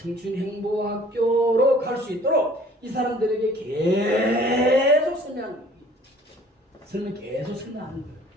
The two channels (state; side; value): normal; both; correlation 0.53